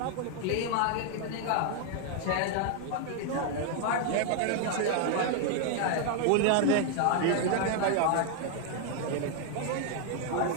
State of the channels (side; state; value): both; different; correlation 0.00